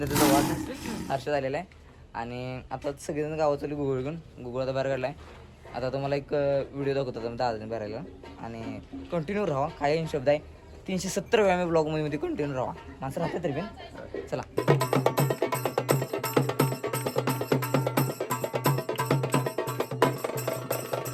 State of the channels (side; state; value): both; identical; correlation 1.00